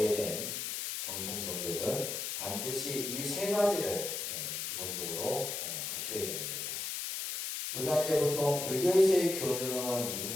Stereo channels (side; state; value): left; noise; hiss, 3 dB below the sound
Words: 정통 종교든 반드시 이 세 가지를 기본적으로 갖춰야 되는 거죠. 우리가 이제 보통 불교에서의 교주는